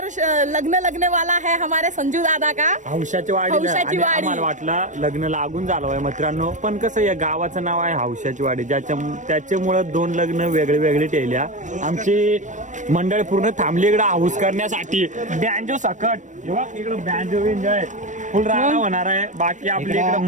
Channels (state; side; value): late; left; 0.36 ms